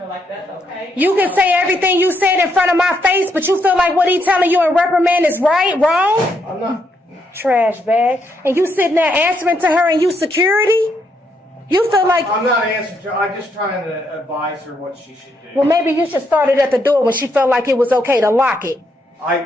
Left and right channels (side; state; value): both; normal; correlation 0.76